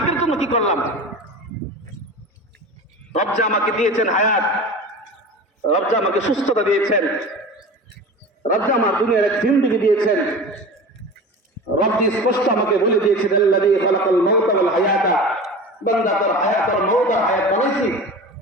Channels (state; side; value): normal; both; correlation 0.33